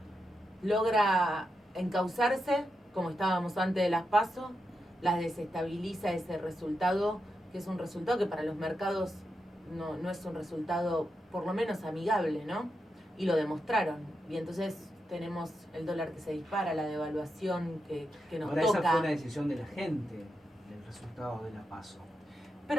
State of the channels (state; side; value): normal; both; correlation 0.86